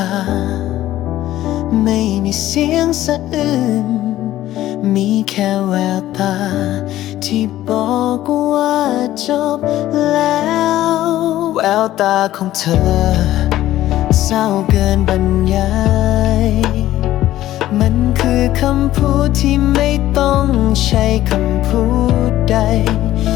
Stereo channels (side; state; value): right; quieter; 14.2 dB